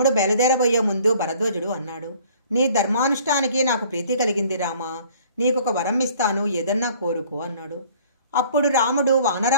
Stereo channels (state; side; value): inverted; both; correlation -0.54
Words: బయలుదేరబోయే ముందు భరద్వాజుడు అన్నాడు, నీ ధర్మానుష్ఠానికి నాకు ప్రీతి కలిగింది రామా. నీకొక వరం ఇస్తాను, ఏదన్నా కోరుకో అన్నాడు. అప్పుడు రాముడు,